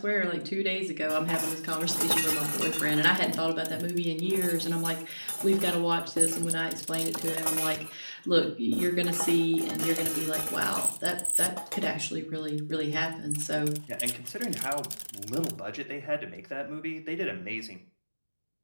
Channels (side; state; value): both; inverted; correlation -1.00